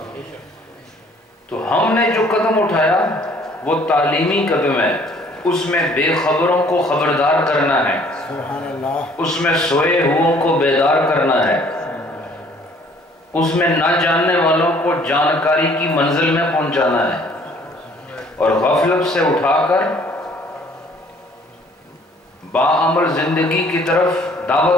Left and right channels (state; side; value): normal; both; correlation 0.58